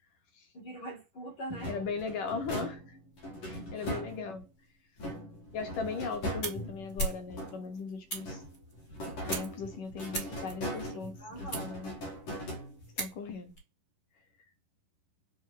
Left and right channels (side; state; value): right; late; 11 ms